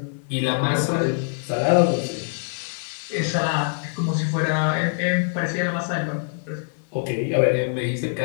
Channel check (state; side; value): silent; right; 63 dB below the other